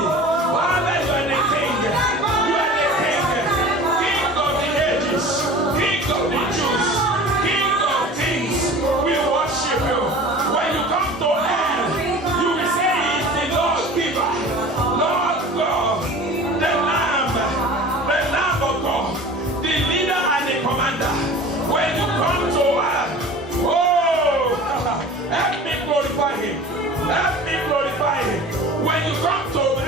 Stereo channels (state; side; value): normal; both; correlation 0.40